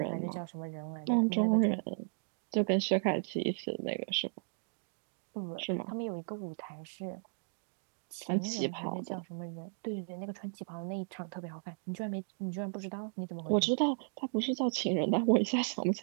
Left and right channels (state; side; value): silent; left; digital silence